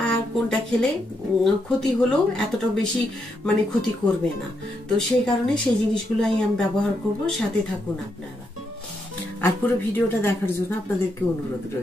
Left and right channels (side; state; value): both; normal; correlation 0.80